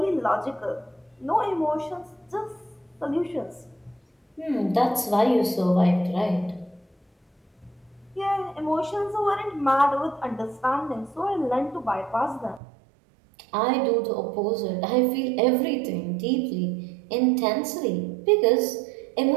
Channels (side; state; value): left; drops out; at 12.6 s